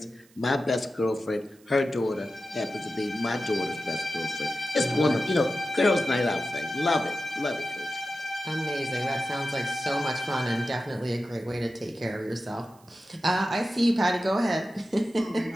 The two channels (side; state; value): right; noise; hiss, 29 dB below the sound